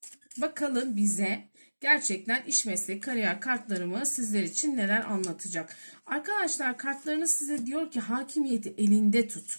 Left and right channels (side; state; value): both; inverted; correlation -1.00